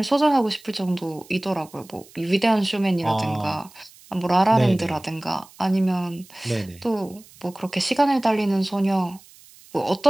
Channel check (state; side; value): noise; right; hiss, 24 dB below the sound